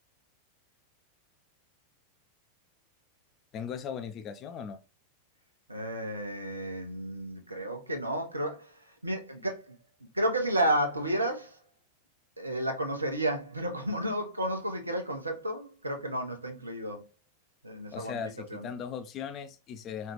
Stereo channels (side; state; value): both; inverted; correlation -0.54